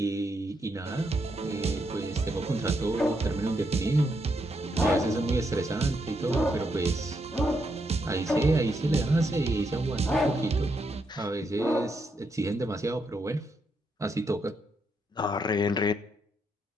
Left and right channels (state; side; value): normal; both; correlation 0.79